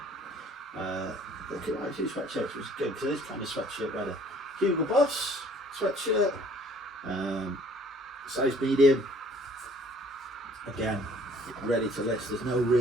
Look at my two sweatshirts, which is good because it is kind of sweatshirt weather. Hugo Boss sweatshirt, size medium. Again, ready to list. There's no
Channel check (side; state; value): both; normal; correlation 0.56